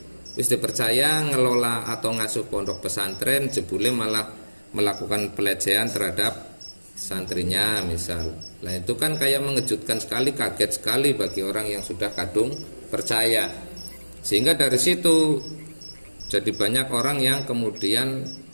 Wis dipercaya ngelola atau ngasuh pondok pesantren, jebule malah melakukan pelecehan terhadap santrinya misal. Nah itu kan kayak mengejutkan sekali, kaget sekali bagi orang yang sudah kadung percaya. Sehingga dari situ jadi banyak orang yang kemudian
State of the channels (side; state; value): both; inverted; correlation -1.00